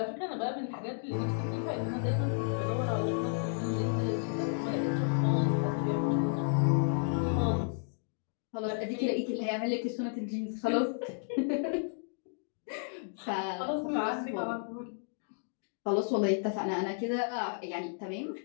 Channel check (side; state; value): right; silent; digital silence